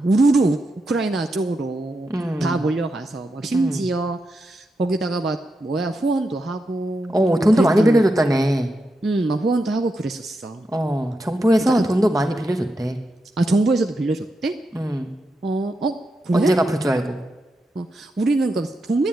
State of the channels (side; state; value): both; normal; correlation 0.86